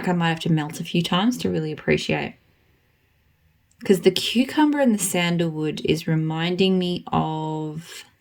I might have to melt a few times to really appreciate. Because the cucumber and the sandalwood is reminding me of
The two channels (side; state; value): both; identical; correlation 1.00